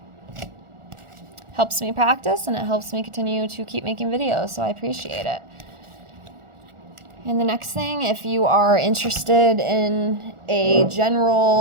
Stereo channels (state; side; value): late; left; 1.4 ms